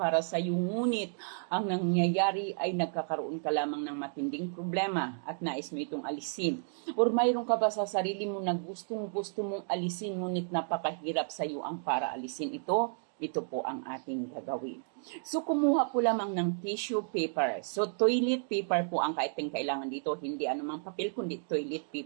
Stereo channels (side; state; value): left; silent; digital silence